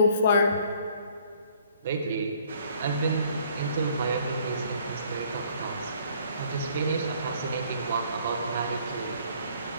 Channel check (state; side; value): inverted; both; correlation -0.60